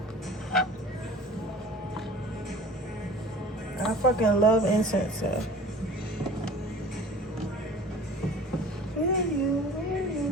I fucking love incense, so.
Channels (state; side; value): normal; both; correlation 0.44